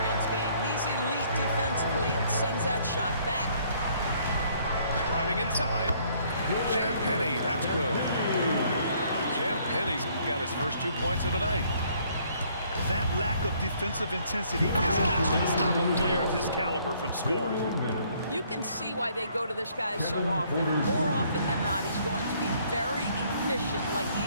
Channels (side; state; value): both; inverted; correlation -0.64